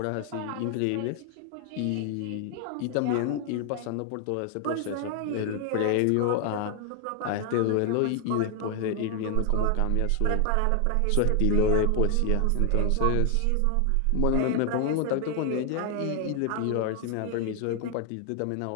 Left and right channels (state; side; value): different; both; correlation 0.00